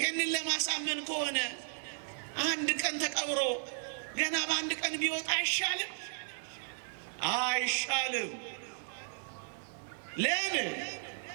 ለማሳመን ከሆነ አንድ ቀን ተቀብሮ ገና በአንድ ቀን ቢወጣ አይሻልም? አይሻልም። ለምን?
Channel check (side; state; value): left; silent; digital silence